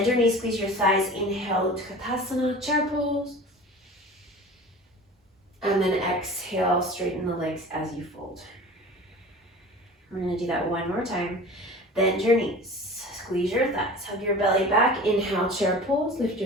your knees, squeeze your thighs. Inhale, Utkatasana, chair pose. And then exhale, straighten the legs as you fold. We're gonna do that one more time. Bend your knees, squeeze your thighs, hug your belly back. Inhale, chair pose, lift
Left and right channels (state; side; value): normal; both; correlation 0.39